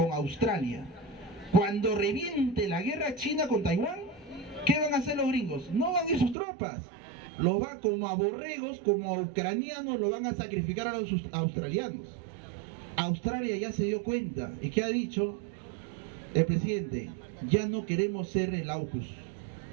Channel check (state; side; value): drops out; left; at 6.4 s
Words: Australia. Cuando reviente la guerra china con Taiwán, ¿qué van a hacer los gringos? No van a ir sus tropas. Los van como a borregos, como a ucranianos, lo van a sacrificar a los australianos. Australia ya se dio cuenta. ¿Y qué ha dicho el presidente? Ya no queremos ser el AUKUS.